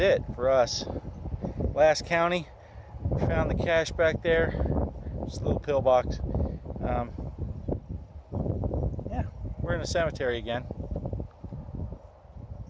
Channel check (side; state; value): both; identical; correlation 1.00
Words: for us. Last county. We found the cache back there. Just a little pillbox. Yeah, we're in a cemetery again.